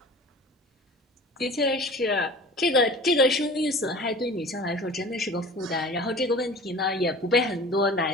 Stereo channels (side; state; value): both; normal; correlation 0.41